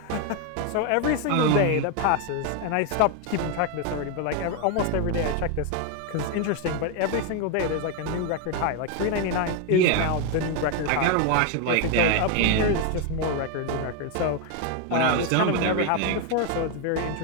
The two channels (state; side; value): different; both; correlation 0.01